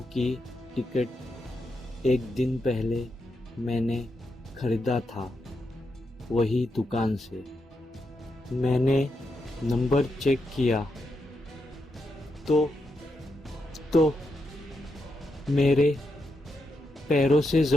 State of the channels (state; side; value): normal; both; correlation 0.84